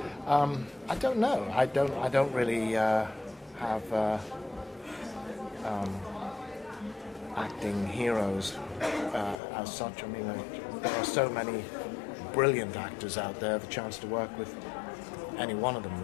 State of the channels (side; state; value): right; drops out; at 9.3 s